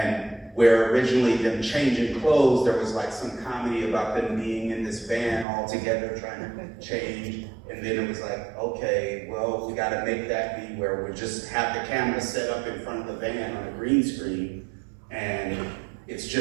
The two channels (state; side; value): drops out; left; at 5.5 s